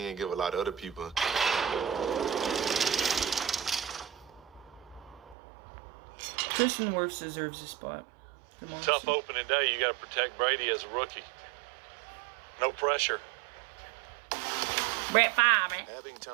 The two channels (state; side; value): drops out; left; at 5.4 s